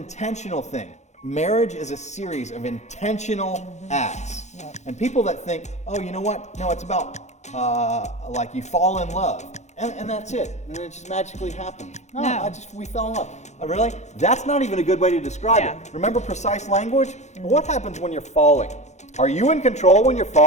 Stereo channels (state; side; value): late; right; 0.33 ms